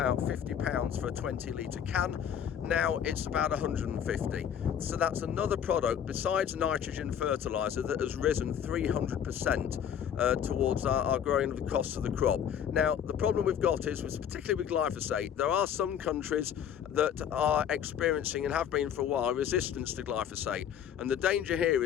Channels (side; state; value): right; quieter; 8.9 dB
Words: £50 for a 20-litre can. Now it's about 150. So that's another product besides nitrogen fertilizer that has risen 300% towards our growing of the cost of the crop. Now, the problem we've got is, particularly with glyphosate, there are some countries that are experiencing, and have been for a while, resistance to glyphosate. And the danger here